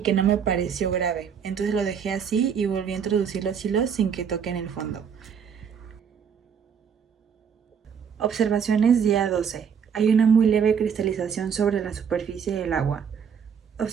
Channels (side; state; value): left; quieter; 7.2 dB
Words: no me pareció grave, entonces lo dejé así y volví a introducir los hilos sin que toquen el fondo. Observaciones día 12. Hay una muy leve cristalización sobre la superficie del agua.